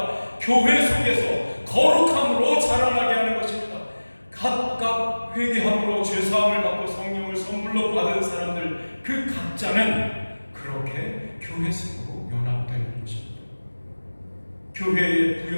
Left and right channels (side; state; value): both; inverted; correlation -1.00